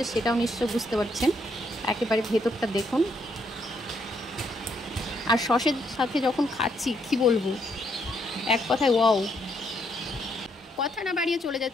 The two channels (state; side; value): normal; both; correlation 0.74